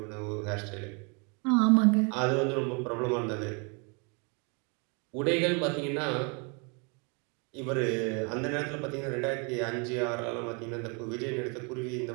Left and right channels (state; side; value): quieter; left; 33.9 dB